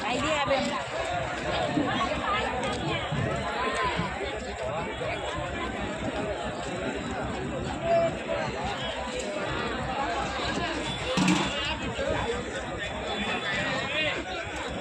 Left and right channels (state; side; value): identical; both; correlation 1.00